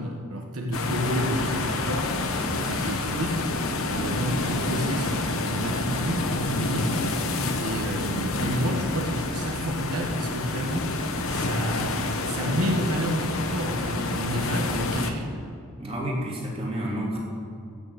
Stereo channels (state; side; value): normal; both; correlation 0.47